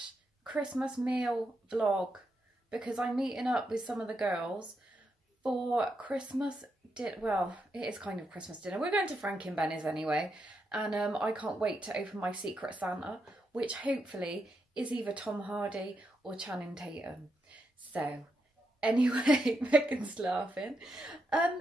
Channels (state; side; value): normal; both; correlation 0.83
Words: Christmas meal vlog, because I'm meeting up with some of the girls for Christmas well, it is kind of Christmas dinner. We're going to Frank and Benny's anyway, and I can't wait to open my Secret Santa, which hopefully is either Tom Hardy or Channing Tatum. So anyway, Megan's laughing.